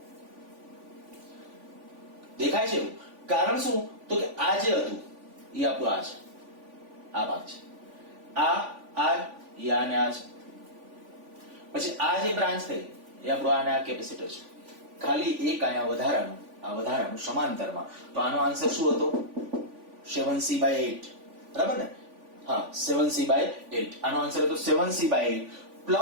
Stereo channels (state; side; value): late; left; 3.5 ms